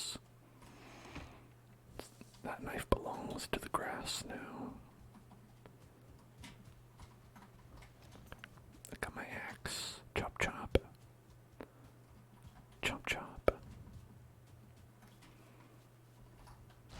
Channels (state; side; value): identical; both; correlation 1.00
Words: That knife belongs to the grass now. I got my axe. Chop chop. Chop chop.